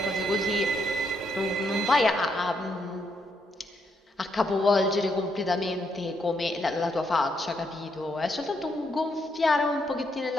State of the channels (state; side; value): normal; both; correlation 0.77